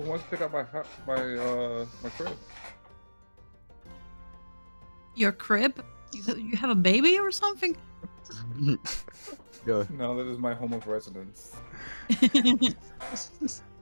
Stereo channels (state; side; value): inverted; both; correlation -1.00